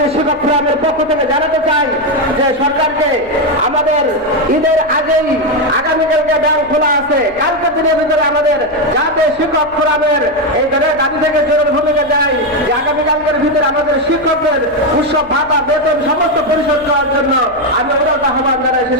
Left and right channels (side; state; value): left; noise; hum, 26 dB below the sound